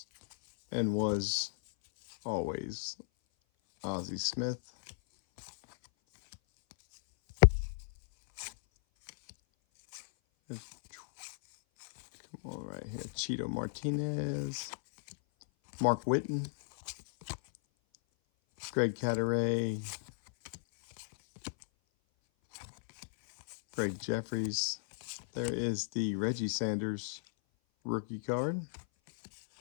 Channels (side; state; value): right; silent; 55 dB below the other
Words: and was always Ozzie Smith. There's right here, Cheeto Martinez, Mark Whitten, Greg Cadaret, Greg Jeffries. There is the Reggie Sanders rookie card